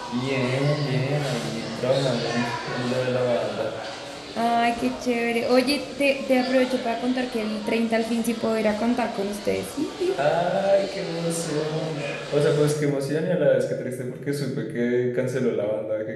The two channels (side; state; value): both; identical; correlation 1.00